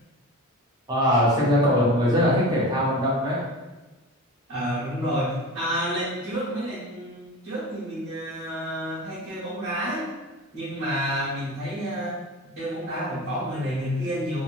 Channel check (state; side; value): normal; both; correlation 0.33